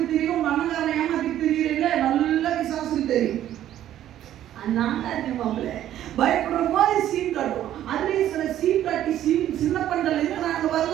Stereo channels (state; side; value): quieter; left; 12.0 dB